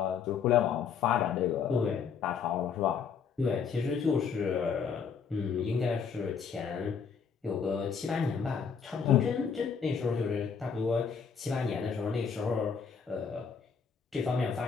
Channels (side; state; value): right; quieter; 6.4 dB